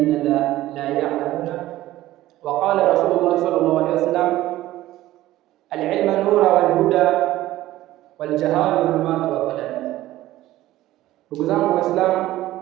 لا يعلمون؟ وقال رسول الله صلى الله عليه وسلم العلم نور والهدى والجهال ظلمات وظلام. Ndugu zangu Waislamu,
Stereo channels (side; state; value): left; quieter; 15.5 dB